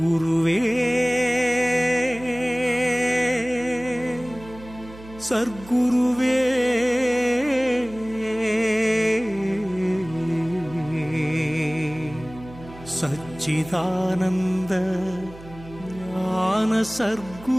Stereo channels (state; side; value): noise; right; hum, 18 dB below the sound